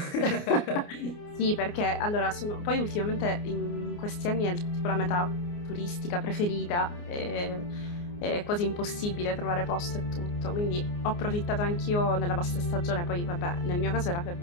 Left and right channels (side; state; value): right; late; 29 ms